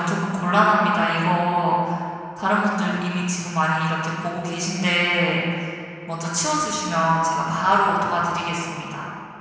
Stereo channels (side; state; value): both; identical; correlation 1.00